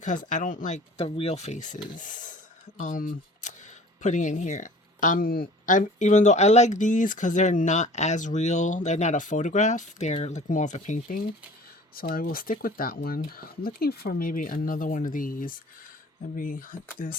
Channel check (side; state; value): both; normal; correlation 0.47